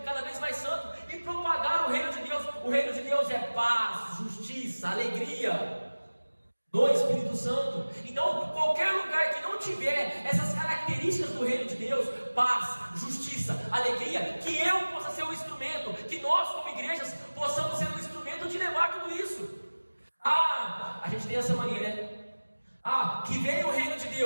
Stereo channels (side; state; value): both; inverted; correlation -1.00